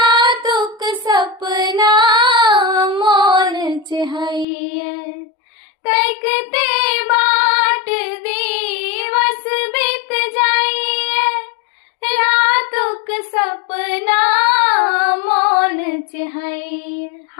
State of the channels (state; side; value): drops out; right; at 4.5 s